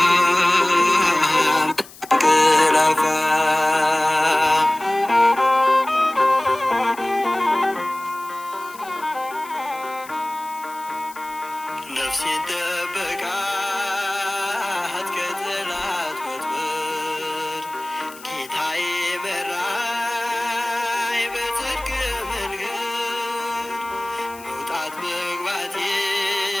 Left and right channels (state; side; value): noise; left; hiss, 19 dB below the sound